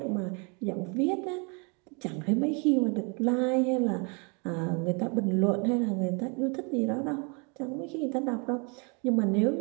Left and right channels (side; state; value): left; quieter; 33.9 dB